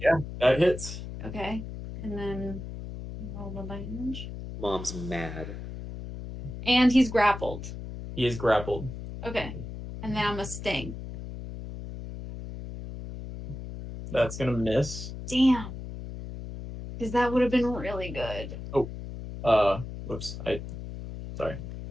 That hits. Okay, and then roll the damage. Mom's mad. And he's grappled. He is grappled. Okay, and then I'm a sting. That's gonna miss. Damn. Because that would have been really good. Whoops. Sorry.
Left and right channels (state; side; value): noise; left; hum, 9 dB below the sound